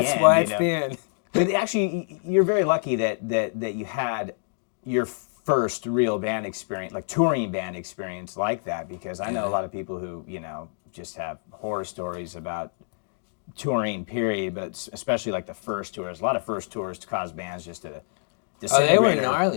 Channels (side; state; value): right; silent; digital silence